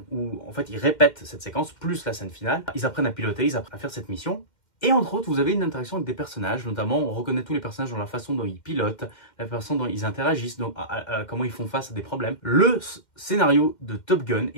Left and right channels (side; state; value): right; late; 2.1 ms